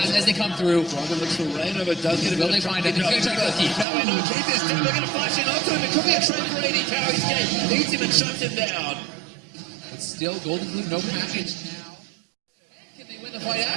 as they come through. Froggen looks for Reignover, does get a bit Will they find him? He's going to try to kill Keith. Now we know Keith is dead. They're going to flash in onto him. It could be a trade for AD Carry's Gate. Eats him and shuts him down. But still, 𝐿CS, no package now. Can they win the fight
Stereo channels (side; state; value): left; drops out; at 3.9 s